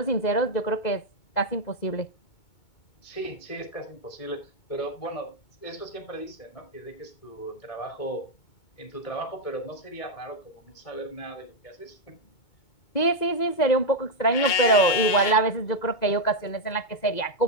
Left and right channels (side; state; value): right; late; 2.2 ms